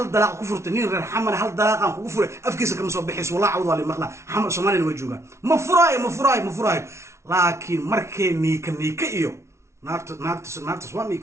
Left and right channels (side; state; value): left; late; 0.13 ms